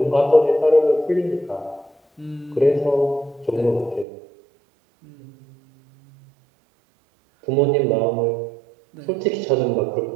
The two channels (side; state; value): left; drops out; at 4.0 s